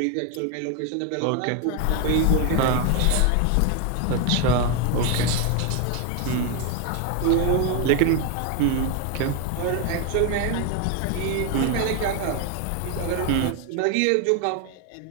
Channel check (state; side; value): different; both; correlation 0.01